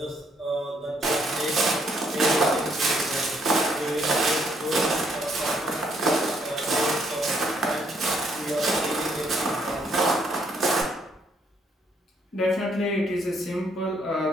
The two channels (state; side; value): normal; both; correlation 0.70